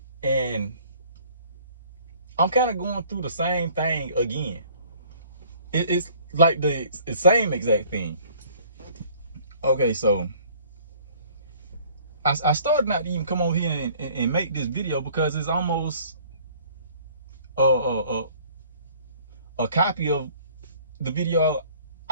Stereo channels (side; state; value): both; inverted; correlation -0.54